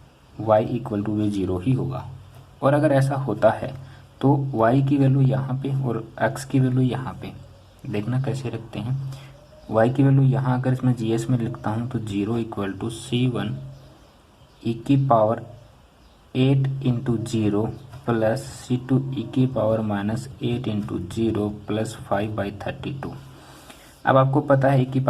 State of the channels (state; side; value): identical; both; correlation 1.00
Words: y इक्वल टू भी 0 ही होगा। और अगर ऐसा होता है तो y की वैल्यू यहाँ पे और x की वैल्यू यहाँ पे, देखना कैसे रखते हैं। y की वैल्यू यहाँ अगर इसमें GS में लिखता हूँ तो 0 इक्वल टू C1 e की power 8 into 0 plus C2 e की पावर माइनस 8 इंटू 0 प्लस 5/32। अब आपको पता है e की